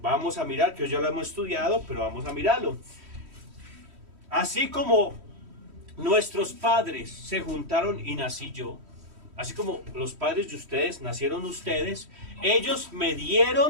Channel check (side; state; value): left; late; 3.1 ms